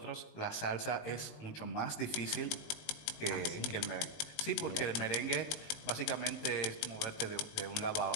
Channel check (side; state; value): right; late; 19 ms